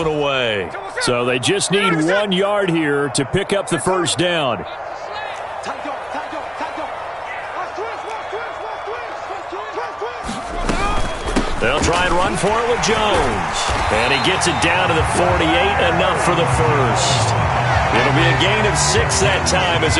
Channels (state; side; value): identical; both; correlation 1.00